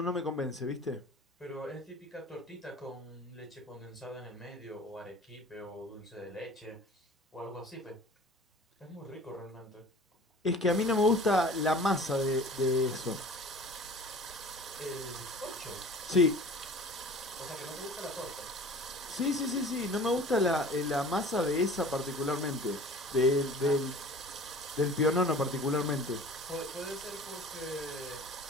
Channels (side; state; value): both; normal; correlation 0.43